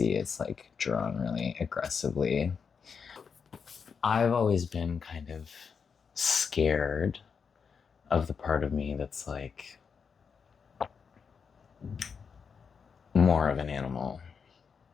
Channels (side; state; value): right; quieter; 6.0 dB